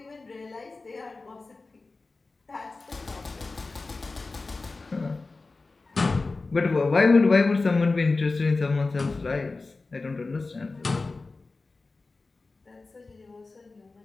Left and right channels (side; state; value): right; quieter; 3.7 dB